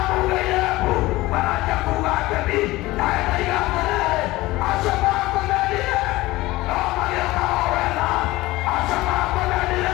mbu maranjia kuuga ngemi nawe ndaiga atĩrĩrĩ acio makũmenire no magĩũkaga o wega acio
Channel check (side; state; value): right; quieter; 18.9 dB